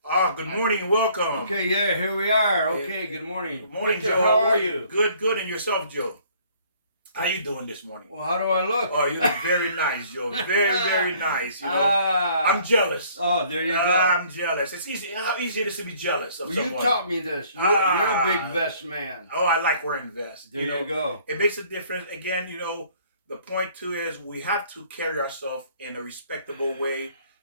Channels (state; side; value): inverted; both; correlation -0.58